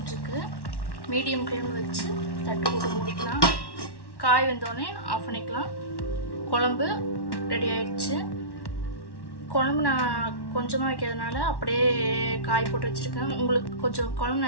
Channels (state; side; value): late; right; 1.1 ms